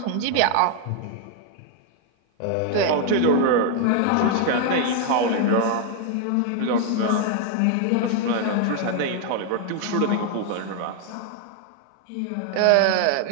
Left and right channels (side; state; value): both; different; correlation 0.00